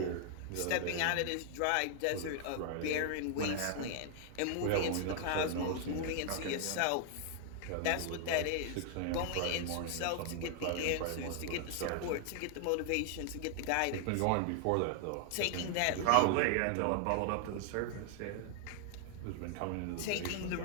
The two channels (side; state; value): both; different; correlation 0.00